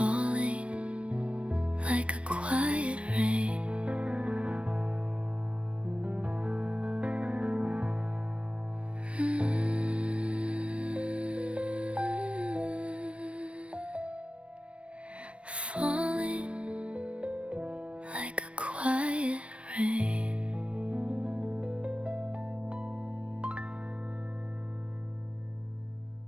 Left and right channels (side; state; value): left; late; 0.061 ms